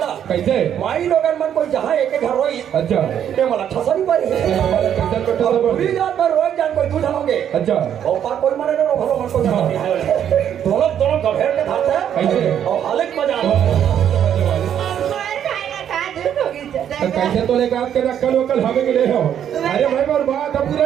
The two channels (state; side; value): quieter; left; 9.5 dB